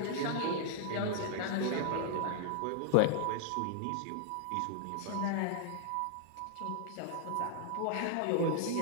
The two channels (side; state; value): both; different; correlation -0.01